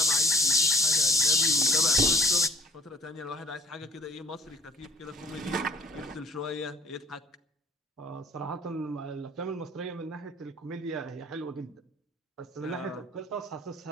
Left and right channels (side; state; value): both; normal; correlation 0.55